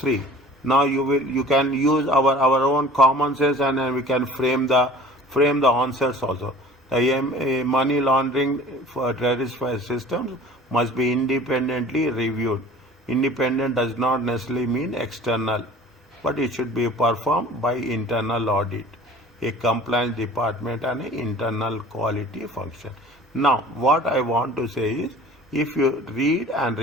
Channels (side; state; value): both; normal; correlation 0.45